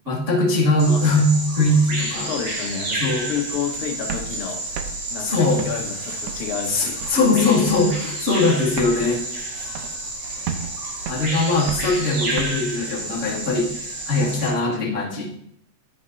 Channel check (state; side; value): late; left; 7.8 ms